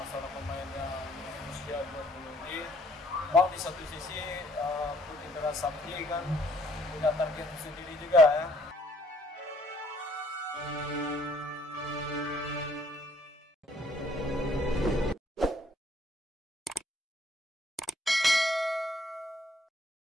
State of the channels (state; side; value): normal; both; correlation 0.63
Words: pemain yang usia 20 ini. Mau di satu sisi Putih Merah Sakti kan punya target sendiri juga ya.